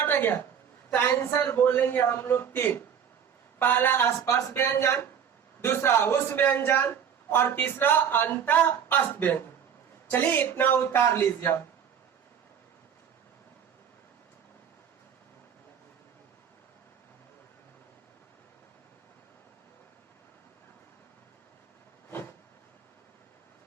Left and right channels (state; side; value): quieter; left; 8.0 dB